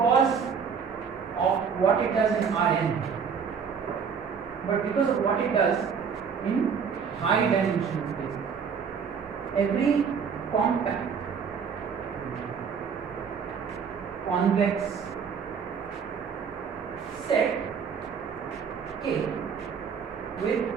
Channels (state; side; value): quieter; left; 6.5 dB